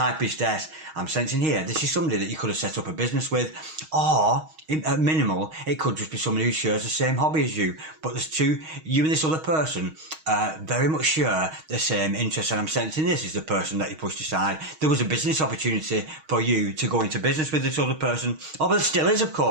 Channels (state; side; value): late; left; 6.4 ms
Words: priestess, I'm sensing here, this is somebody that you could have set up a business with, or, at minimal, it could just be somebody who shares the same hobby as you. But there's two, you and this other person very much share the same interests, and I'm sensing this is the person that you pushed aside. There was a business opportunity for you to go into business with this other person. Oh, but there still is, of